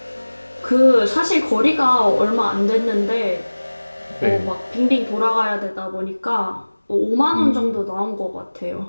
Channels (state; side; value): inverted; both; correlation -1.00